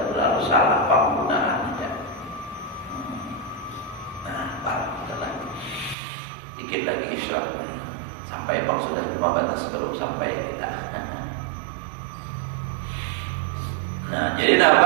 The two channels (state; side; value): drops out; left; at 6.0 s